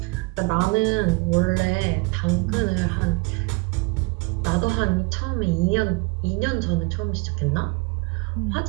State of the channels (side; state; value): left; quieter; 26.2 dB